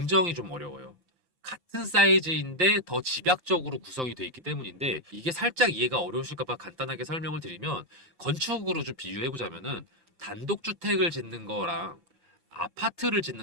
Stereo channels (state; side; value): late; left; 5.8 ms